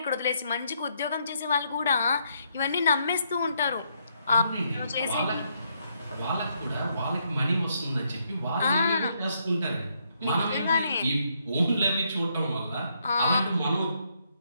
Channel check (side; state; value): both; inverted; correlation -0.75